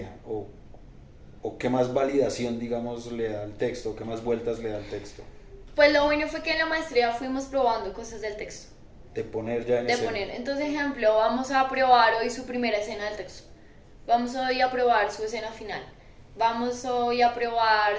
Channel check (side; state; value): both; identical; correlation 1.00